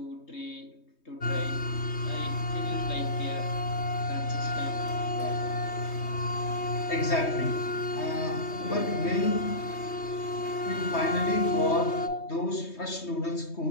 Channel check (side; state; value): right; late; 3.2 ms